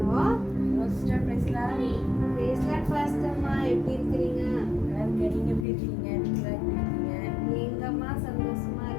எப்படி இருக்கிறீங்க? நீங்க எப்படி இருக்கீங்க? எங்கம்மா சந்தோஷமா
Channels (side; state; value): right; drops out; at 5.7 s